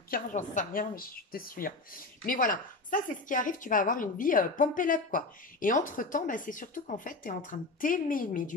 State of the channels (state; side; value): quieter; right; 3.3 dB